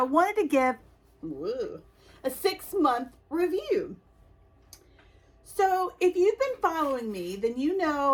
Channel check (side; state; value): both; identical; correlation 1.00